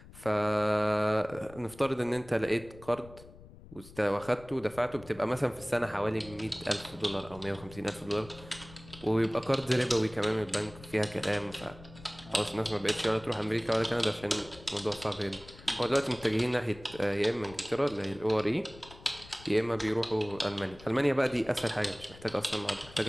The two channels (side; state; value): left; noise; rumble, 19 dB below the sound